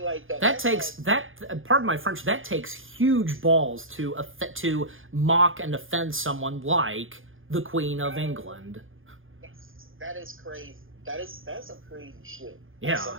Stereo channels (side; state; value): left; late; 0.59 ms